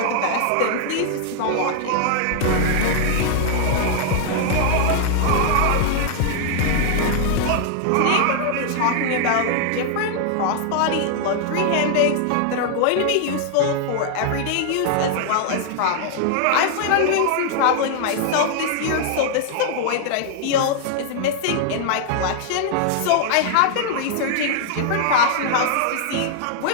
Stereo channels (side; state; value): both; different; correlation -0.01